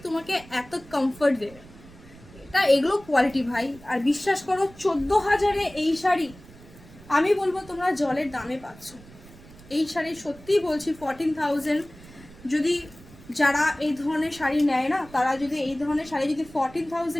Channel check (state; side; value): noise; right; rumble, 21 dB below the sound